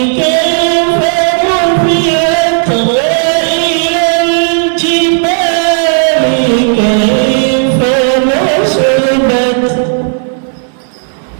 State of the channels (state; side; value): silent; left; 63 dB below the other